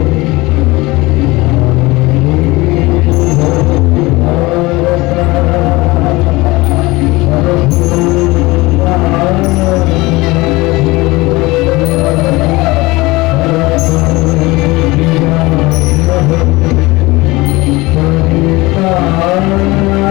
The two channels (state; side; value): quieter; right; 21.8 dB